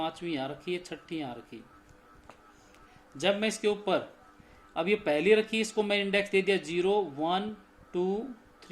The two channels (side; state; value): both; identical; correlation 1.00